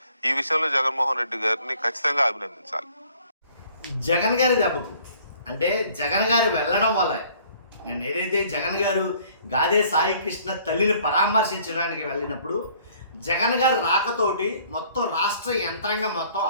ఈ విషయంలో జగన్మోహన్ రెడ్డి గారిని ఖచ్చితంగా అభినందించాలి. జగన్ గారి దెబ్బకు అంటే జగన్ గారు వెళ్ళడం వల్ల నేను ఏదైతే జగన్ గారు గాదే సాయి కృష్ణ తల్లిని పరామర్శించడానికి వెళ్ళినప్పుడు జగన్ గారు రాకతోటి మొత్తం రాష్ట్ర యంత్రాంగం మొత్తం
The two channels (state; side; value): inverted; both; correlation -0.57